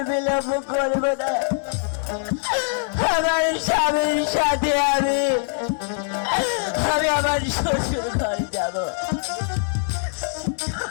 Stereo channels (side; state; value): right; silent; digital silence